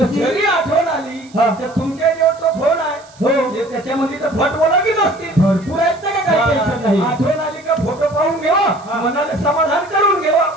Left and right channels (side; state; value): right; noise; hiss, 26 dB below the sound